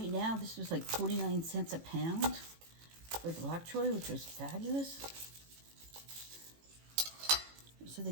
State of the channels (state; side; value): late; left; 18 ms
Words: now, this was like 49 cents a pound for the bok choy, which was fabulous. So